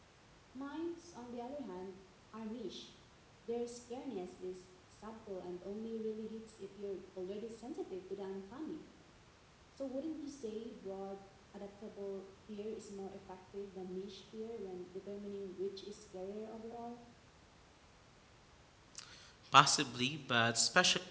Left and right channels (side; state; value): both; identical; correlation 1.00